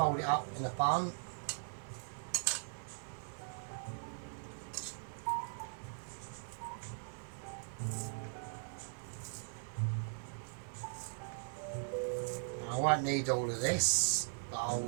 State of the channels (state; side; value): silent; left; digital silence